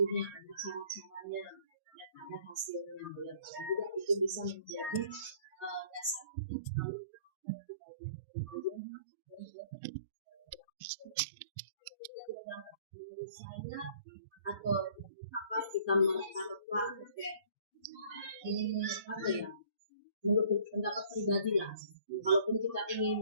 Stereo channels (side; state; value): both; inverted; correlation -0.55